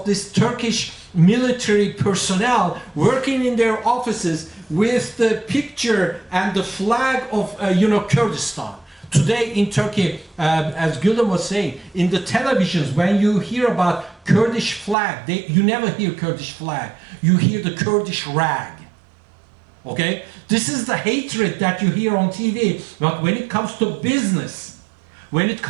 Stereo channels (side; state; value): left; drops out; at 15.0 s